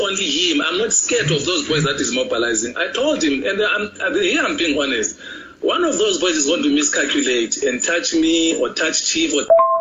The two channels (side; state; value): both; identical; correlation 1.00